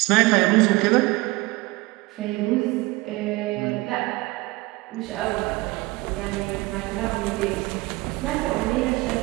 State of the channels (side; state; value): left; quieter; 22.0 dB